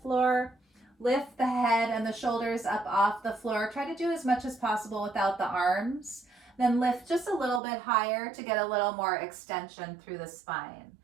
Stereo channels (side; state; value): left; drops out; at 7.6 s